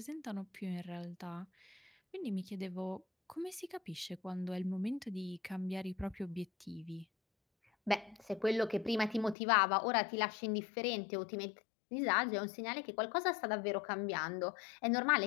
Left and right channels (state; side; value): drops out; right; at 9.3 s